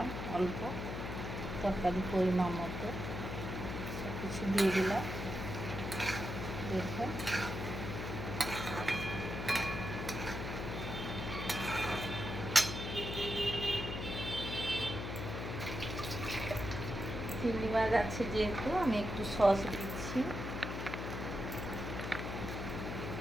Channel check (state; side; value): noise; left; hum, 5 dB below the sound